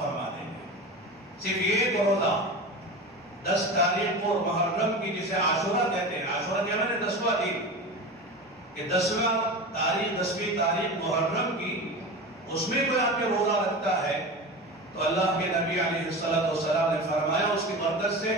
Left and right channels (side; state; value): both; normal; correlation 0.29